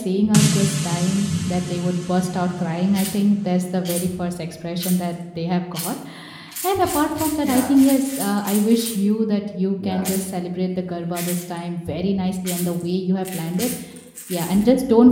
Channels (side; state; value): both; identical; correlation 1.00